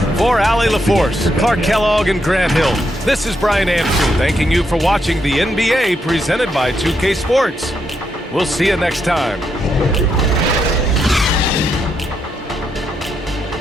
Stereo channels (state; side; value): normal; both; correlation 0.79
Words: For Allie LaForce, Clark Kellogg, and Grant Hill, this is Brian Anderson thanking you for watching the NBA presented by 2K Sports. We'll see you next time.